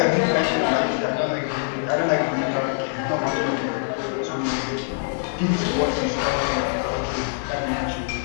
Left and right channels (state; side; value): silent; right; digital silence